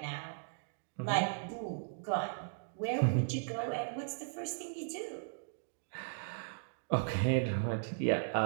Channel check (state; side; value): silent; left; digital silence